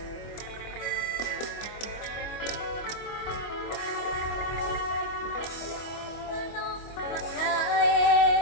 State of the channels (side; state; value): right; late; 25 ms